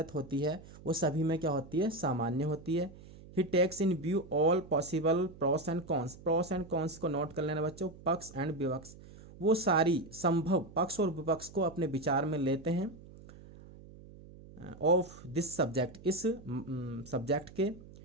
होती है वो सभी में क्या होती है, सामान्य होती है। He takes in view all possible pros and cons, pros and cons को नोट कर लेना बच्चों, पक्ष एंड विपक्ष, वो सारी संभव पक्ष और विपक्ष को अपने विचार में लेते हैं। ऑफ दिस सब्जेक्ट, इस सब्जेक्ट के।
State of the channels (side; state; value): right; noise; hum, 19 dB below the sound